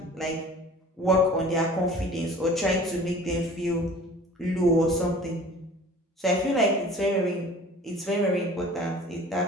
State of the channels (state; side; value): normal; both; correlation 0.45